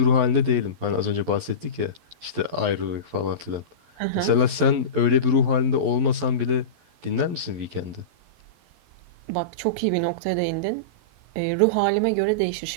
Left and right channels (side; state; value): left; late; 11 ms